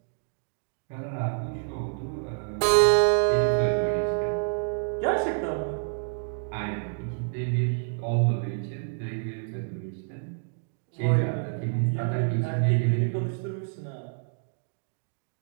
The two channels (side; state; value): left; silent; digital silence